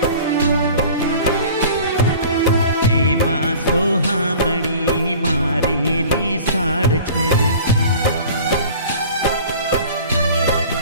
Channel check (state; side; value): inverted; both; correlation -0.44